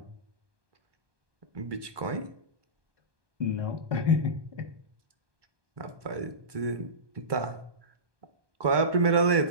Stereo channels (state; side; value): late; left; 1.2 ms